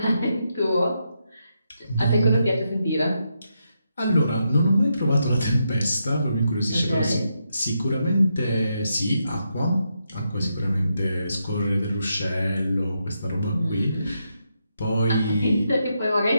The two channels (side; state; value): both; inverted; correlation -0.83